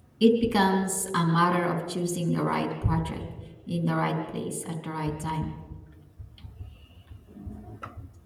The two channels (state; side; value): identical; both; correlation 1.00